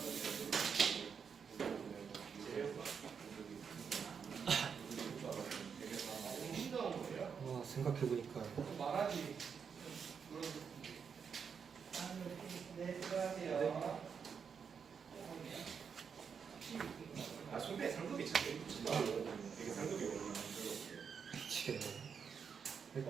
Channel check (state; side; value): quieter; left; 6.5 dB